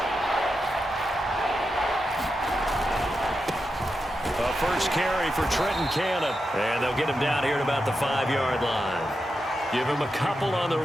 A first carry for Trenton Cannon, and they'll get him down here at about the 5-yard line. Give him a couple on the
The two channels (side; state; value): both; normal; correlation 0.88